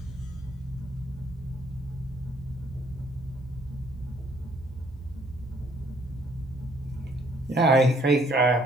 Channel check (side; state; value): both; normal; correlation 0.64